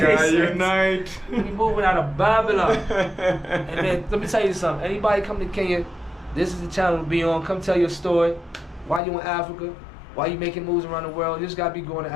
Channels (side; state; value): right; drops out; at 9.0 s